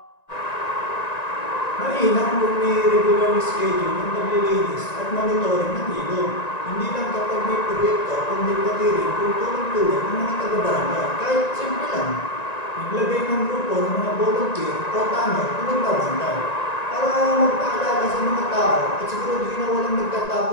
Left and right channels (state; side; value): late; right; 1.9 ms